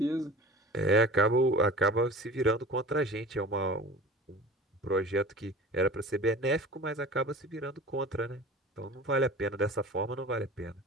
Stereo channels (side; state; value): both; normal; correlation 0.39